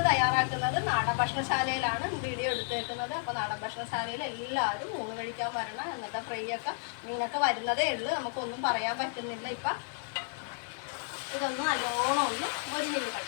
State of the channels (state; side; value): silent; right; 56 dB below the other